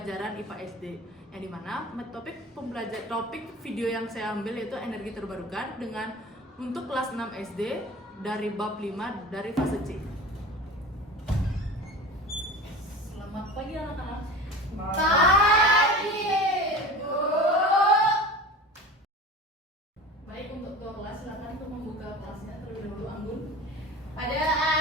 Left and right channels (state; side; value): normal; both; correlation 0.35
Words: IPA SD, yang dimana topik video yang saya ambil yaitu energi terbarukan dengan untuk kelas 6 SD dari bab 5 dari fase C. Selamat pagi anak-anak. Pagi, Bu. Baik, untuk ketua kelas silakan untuk membuka kelasnya terlebih dahulu. Anggun. Pada